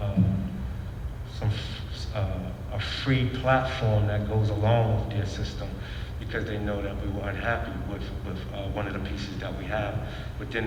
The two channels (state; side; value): identical; both; correlation 1.00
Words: a free platform that goes along with their system, because they know that we were unhappy with one of the pieces that we have within